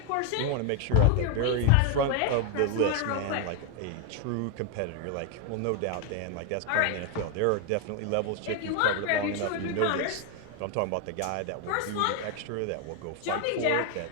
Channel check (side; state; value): both; different; correlation 0.01